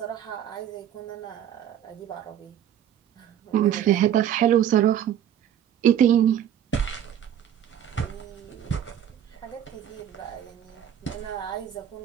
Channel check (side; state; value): left; quieter; 10.1 dB